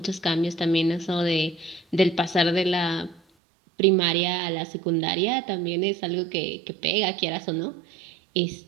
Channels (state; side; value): drops out; left; at 3.2 s